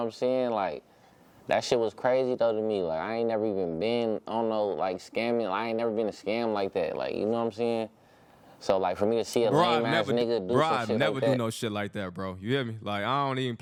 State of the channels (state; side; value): identical; both; correlation 1.00